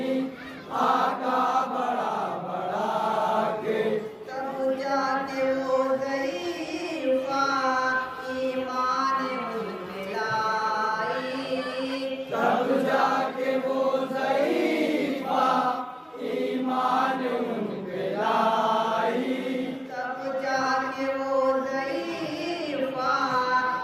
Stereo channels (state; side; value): identical; both; correlation 1.00